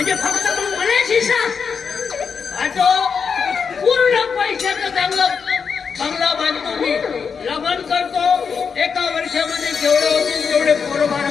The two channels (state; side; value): quieter; right; 6.0 dB